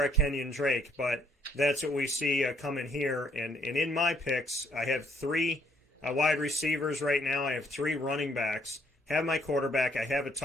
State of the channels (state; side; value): normal; both; correlation 0.67